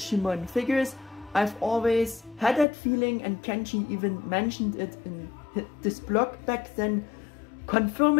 figures. I've always had that feeling, and Kenshi even mentioned it in this blog back then,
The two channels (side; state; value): right; drops out; at 2.7 s